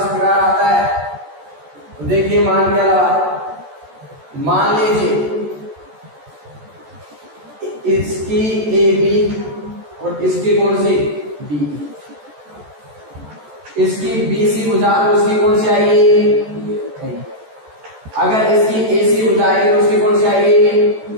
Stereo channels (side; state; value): left; late; 14 ms